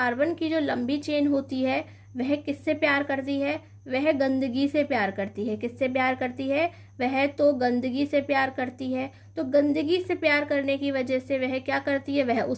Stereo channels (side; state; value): both; identical; correlation 1.00